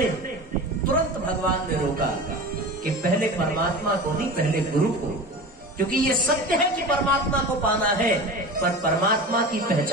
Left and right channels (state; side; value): normal; both; correlation 0.32